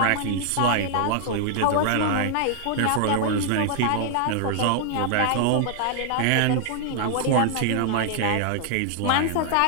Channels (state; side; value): different; both; correlation 0.00